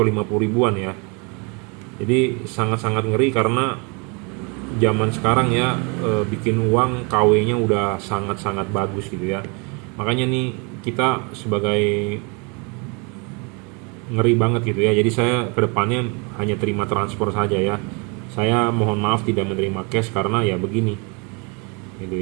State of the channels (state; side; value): quieter; left; 32.1 dB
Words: 50 ribuan ya. Jadi sangat-sangat ngeri karena zaman sekarang ya, bikin uang KW-nya udah sangat-sangat bagus gitu ya. Makanya nih kita sebagai ngeri banget gitu ya. Jadi saya kedepannya hanya terima transfer saja ya. Saya mohon maaf tidak menerima cash karena ya begini gitu